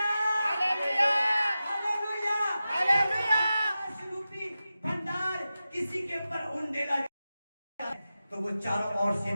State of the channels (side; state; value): both; inverted; correlation -0.93